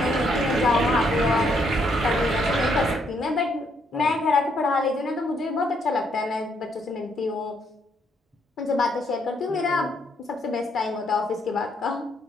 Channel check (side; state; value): both; normal; correlation 0.72